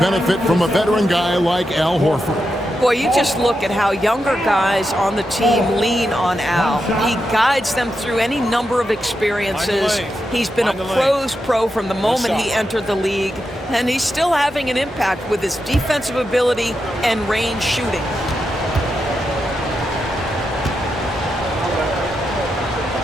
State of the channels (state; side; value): normal; both; correlation 0.87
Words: from a veteran guy like Al Horford. Boy, you just look at how younger guys on the team lean on Al. He guides them through any number of experiences. He's been a pro's pro from the moment he entered the league, and he's still having an impact with his defensive ability and range shooting.